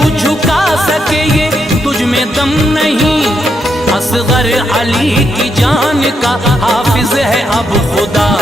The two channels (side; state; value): both; normal; correlation 0.80